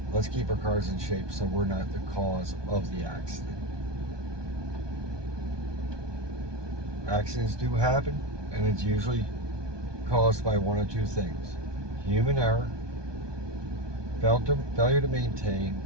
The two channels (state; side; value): late; left; 1.2 ms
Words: Let's keep our cars in shape so we're not the cause of the accident. Accidents do happen, and it's usually caused by one of two things: human error, failure to maintain,